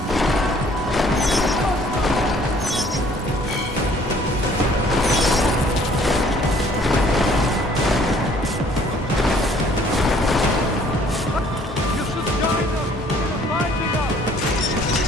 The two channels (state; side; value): normal; both; correlation 0.58